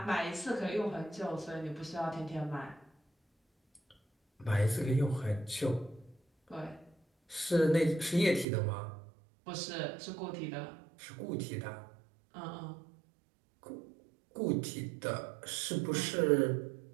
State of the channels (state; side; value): drops out; left; at 8.5 s